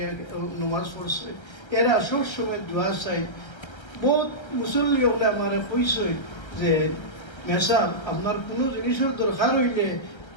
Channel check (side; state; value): right; late; 1.3 ms